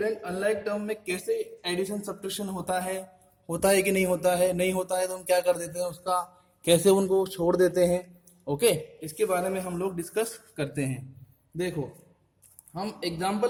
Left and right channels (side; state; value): both; identical; correlation 1.00